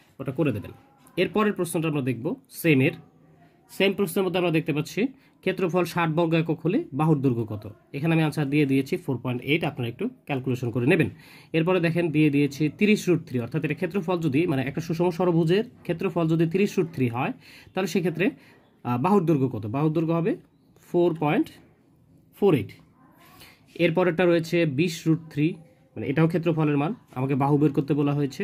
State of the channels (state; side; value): identical; both; correlation 1.00